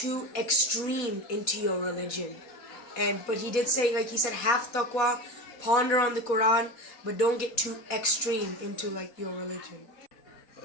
extreme into your religion. But he did say, he said, have taqwa, ponder on the Quran, but don't get too extreme into your religion.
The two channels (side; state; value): right; late; 4.1 ms